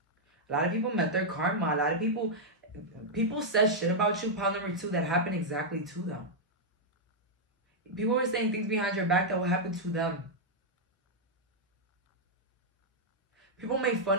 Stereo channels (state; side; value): normal; both; correlation -0.05